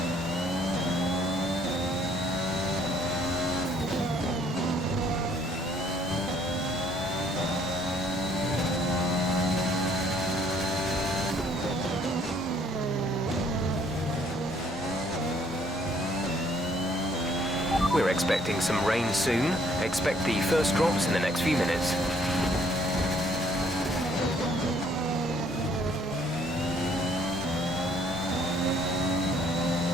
We're expecting some rain soon. Expect the first drops in the next few minutes.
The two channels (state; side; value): normal; both; correlation 0.63